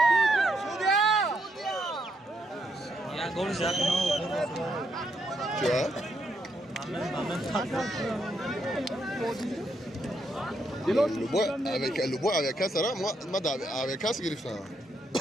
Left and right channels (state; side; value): normal; both; correlation 0.77